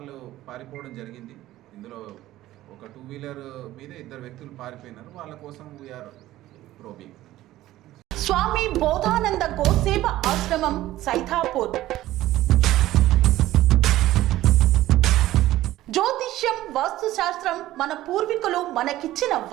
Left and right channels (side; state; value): left; quieter; 15.2 dB